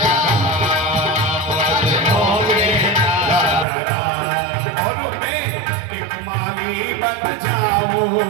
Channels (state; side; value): drops out; left; at 3.7 s